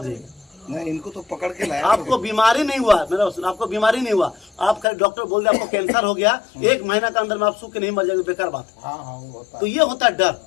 जाएगा। नहीं, इनको तो पकड़ के लाया। आपको बीमारी नहीं हुआ, मेरा सुन, आपको बीमारी नहीं हुआ, आप खाली डॉक्टर बोल दे आपको कैंसर हो गया, 1 महीना के अंदर में आप सूख के नहीं मर जाएंगे, बेकार बात है। हाँ वो होता तो ये होता है डर,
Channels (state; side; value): drops out; right; at 4.9 s